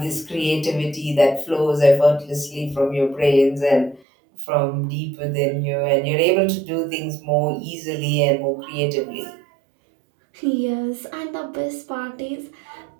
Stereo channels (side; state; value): left; drops out; at 4.0 s